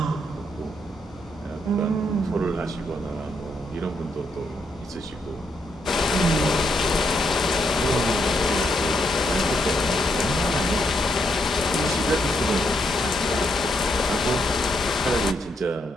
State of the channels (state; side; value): normal; both; correlation 0.77